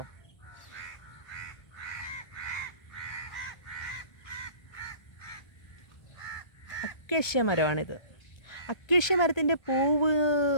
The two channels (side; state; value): right; late; 1.2 ms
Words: അക്കേഷ്യ മരമാണിത്. അക്കേഷ്യ മരത്തിൻ്റെ പൂവ്